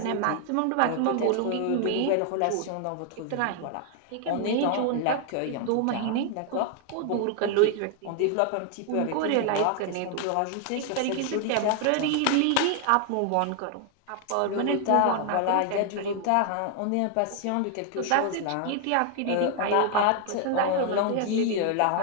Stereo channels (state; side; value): different; both; correlation 0.00